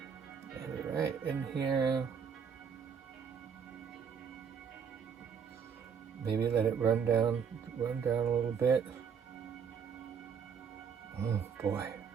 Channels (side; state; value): left; quieter; 6.9 dB